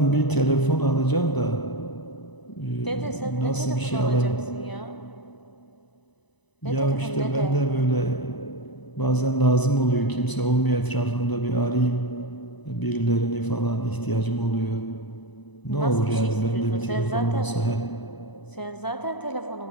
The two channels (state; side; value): late; right; 1.0 ms